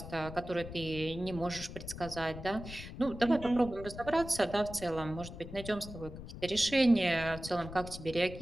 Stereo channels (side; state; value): left; noise; rumble, 11 dB below the sound